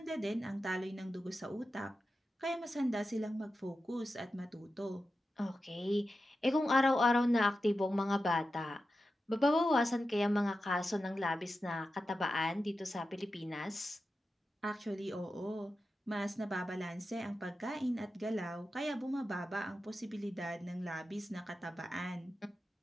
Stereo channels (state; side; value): normal; both; correlation 0.91